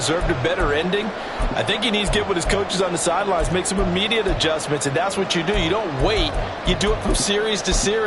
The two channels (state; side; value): identical; both; correlation 1.00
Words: a better ending? I think he needs to get with his coaches on the sidelines, make some immediate adjustments, and that's what you do. You don't wait. You do it from series to